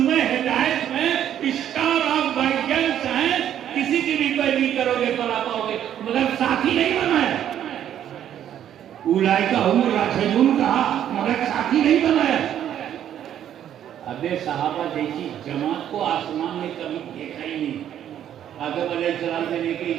हिदायत में स्टार ऑफ गाइडेंस हैं, किसी की भी पैरवी करोगे पला पाओगे, मगर साथी नहीं बनाया। उलाइका हुम राशिदून कहा, मगर साथी नहीं बनाया। अबे सहाबा जैसी जमात को आसमान में कभी देखा ही नहीं, आदम अलैहिस्सलाम से लेकर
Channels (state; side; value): quieter; left; 10.4 dB